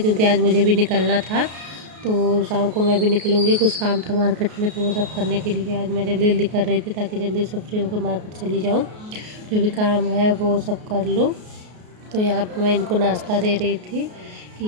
क्योंकि आज मुझे भी निकलना था। तो शाम को मैं भी निकलूँगी, कुछ काम था मार्केट में, तो वो सब करने के लिए आज मैं जल्दी जल्दी कर रही थी, ताकि जल्दी से फ्री होकर मार्केट चली जाऊँ, जो भी काम है वो सब कर लूँ। तो यहाँ पे मैं इनको नाश्ता दे रही थी कि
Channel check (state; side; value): late; left; 33 ms